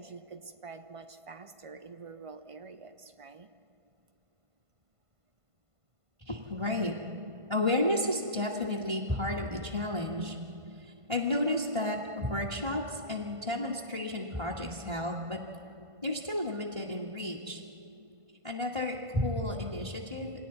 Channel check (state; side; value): late; left; 1.5 ms